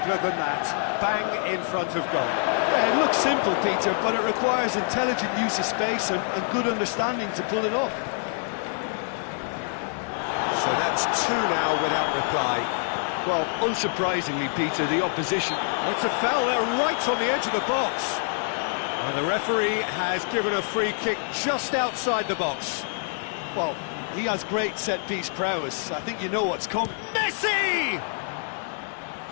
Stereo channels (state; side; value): silent; right; 61 dB below the other